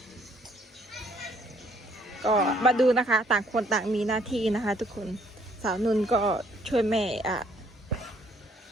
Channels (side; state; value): both; normal; correlation 0.65